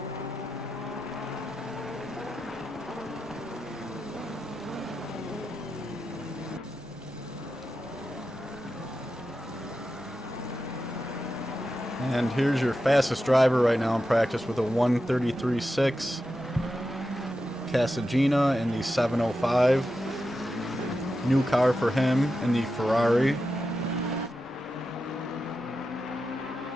And here's your fastest driver right now in practice with a 1:33.6. Casagina in the 705. New car for him in the Ferrari.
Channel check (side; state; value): both; normal; correlation 0.90